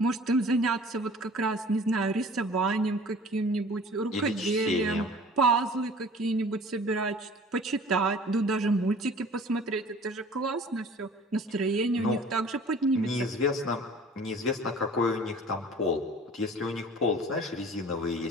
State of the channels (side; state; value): both; normal; correlation 0.47